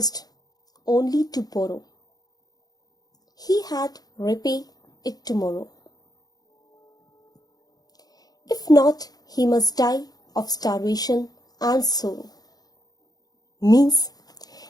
only to borrow. He had repay it tomorrow. If not, he must die of starvation and sorrow. Means,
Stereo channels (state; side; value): late; right; 0.19 ms